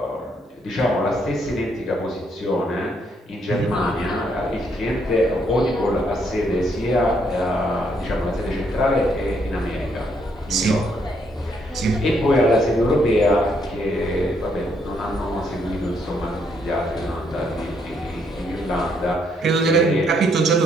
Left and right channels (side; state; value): both; normal; correlation 0.73